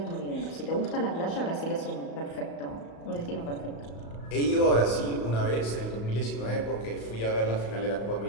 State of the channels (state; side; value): late; right; 35 ms